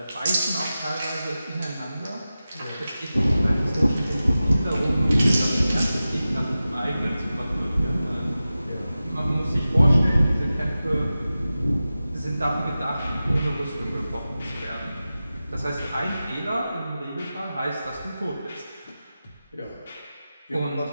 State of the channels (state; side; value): inverted; both; correlation -0.94